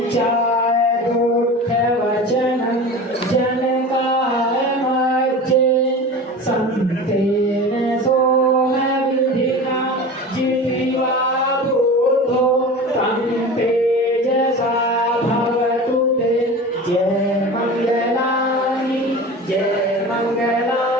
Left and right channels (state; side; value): normal; both; correlation 0.33